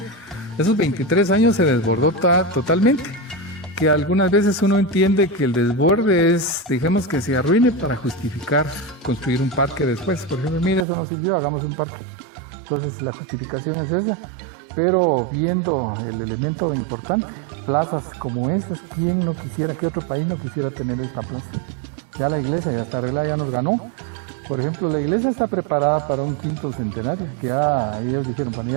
23 años se desbordó totalmente. Que algunas veces uno entiende que el desborde es, digamos, que se arruine para justificar construir un parque después. Por ejemplo, mire, eso no sirvió, hagamos un parque. Entonces la justificación es esa, pero viendo el elemento importante, plazas como estas, ¿quién no quisiera, qué otro país no quisiera tener esta plaza? Ya la iglesia ya está arreglada, ya nos ganó. Por ejemplo, la iglesia está preparada para un 5º centenario, que ya ellos dijeron, bueno,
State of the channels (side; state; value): left; drops out; at 10.9 s